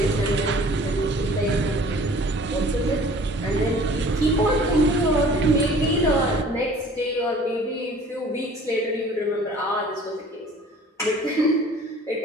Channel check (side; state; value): both; normal; correlation 0.50